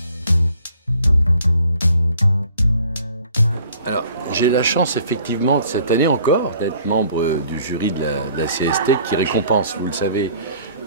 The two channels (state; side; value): inverted; both; correlation -0.56